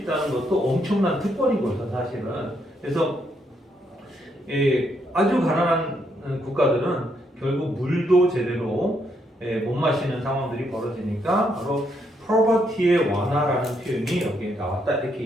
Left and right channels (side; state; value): both; normal; correlation 0.75